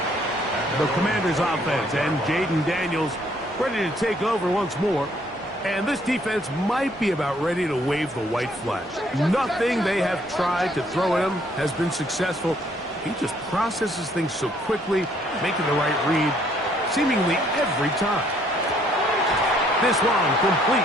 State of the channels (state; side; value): normal; both; correlation 0.65